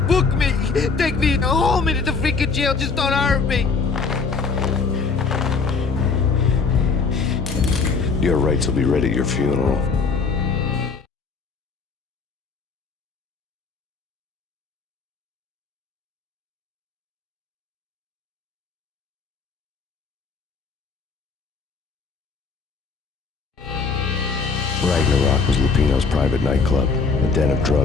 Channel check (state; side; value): quieter; right; 4.8 dB